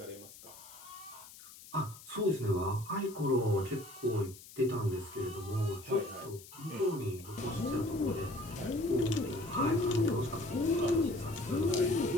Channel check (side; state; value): left; noise; hiss, 18 dB below the sound